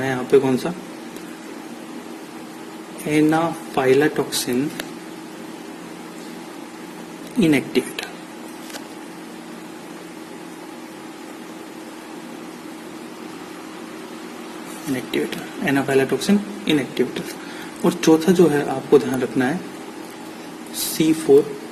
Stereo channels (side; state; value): both; identical; correlation 1.00